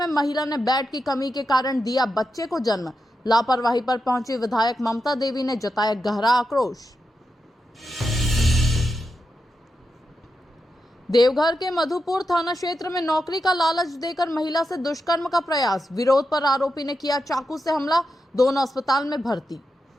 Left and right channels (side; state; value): both; normal; correlation 0.88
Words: महिला ने बेड की कमी के कारण दिया बच्चे को जन्म। लापरवाही पर पहुंची विधायक ममता देवी ने जताया गहरा आक्रोश। देवघर के मधुपुर थाना क्षेत्र में नौकरी का लालच देकर महिला से दुष्कर्म का प्रयास, विरोध पर आरोपी ने किया चाकू से हमला, दोनों अस्पताल में भर्ती।